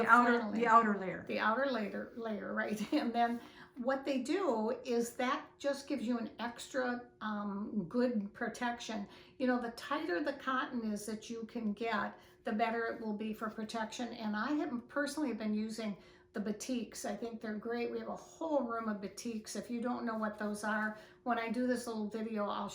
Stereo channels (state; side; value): identical; both; correlation 1.00